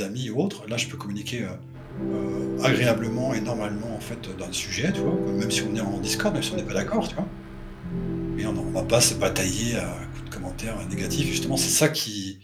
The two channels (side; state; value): both; identical; correlation 1.00